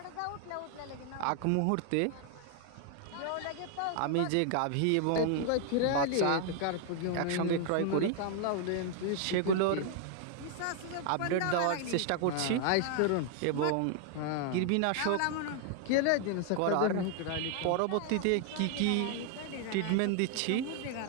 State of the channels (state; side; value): different; both; correlation 0.00